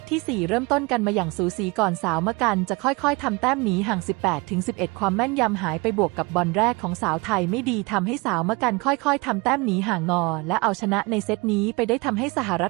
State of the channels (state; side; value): quieter; left; 26.6 dB